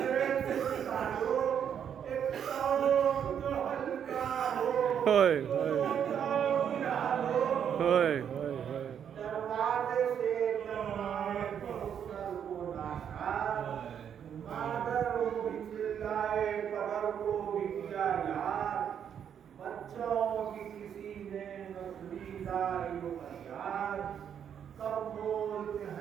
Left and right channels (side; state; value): left; quieter; 8.5 dB